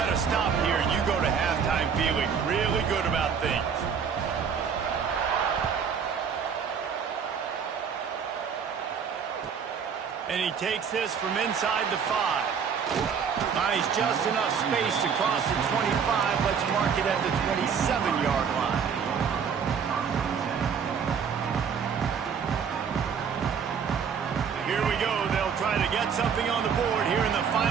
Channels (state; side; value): quieter; left; 6.8 dB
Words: to stop here. You go to halftime feeling really good about things. And he takes this from inside the 5. Nice, just enough space to cross the 25. Let's mark it at the 27-yard line. Here we go. They'll try to get something on the board here in the